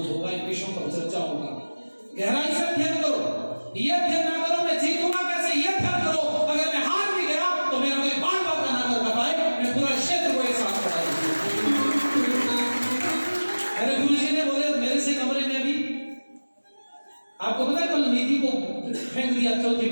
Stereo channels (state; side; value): inverted; both; correlation -1.00